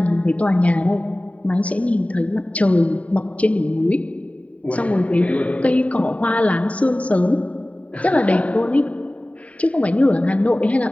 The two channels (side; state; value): right; late; 0.067 ms